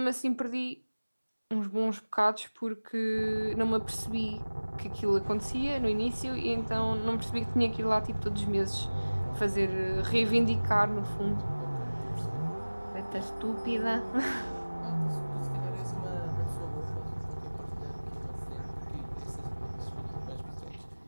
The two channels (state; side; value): inverted; both; correlation -1.00